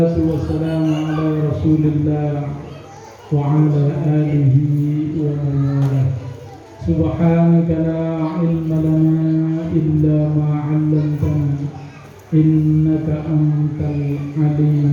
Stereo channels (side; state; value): both; identical; correlation 1.00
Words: wassalamu ala Rasulillah wa ala alihi wa man walah. Subhanaka la ilma lana illa ma 'allamtana innaka antal